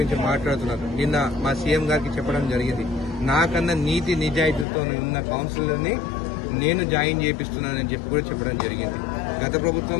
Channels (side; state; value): right; drops out; at 4.7 s